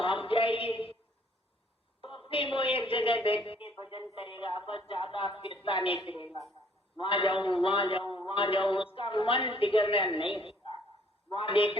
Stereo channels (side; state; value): both; normal; correlation 0.61